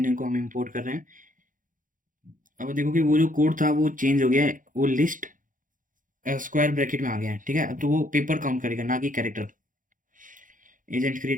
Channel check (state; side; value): late; left; 0.38 ms